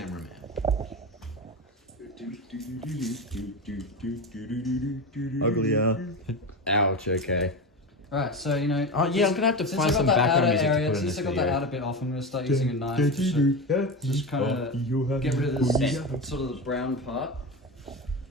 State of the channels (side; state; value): both; normal; correlation 0.22